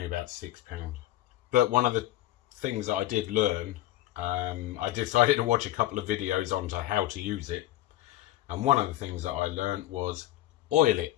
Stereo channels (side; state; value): right; quieter; 14.7 dB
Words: about £6. But one of the things that I did learn, I decided to watch a couple of videos on to how to use it. And one of the things that I learned was oil it.